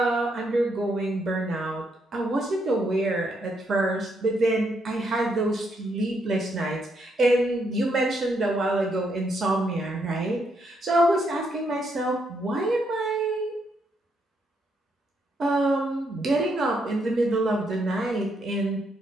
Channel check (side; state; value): both; normal; correlation 0.76